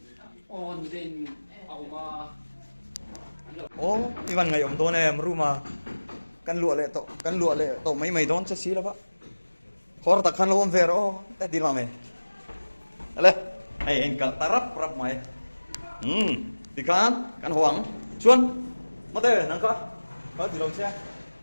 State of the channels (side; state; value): both; inverted; correlation -1.00